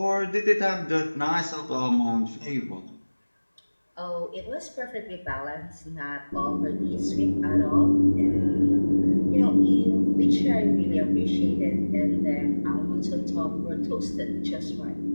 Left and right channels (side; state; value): both; inverted; correlation -1.00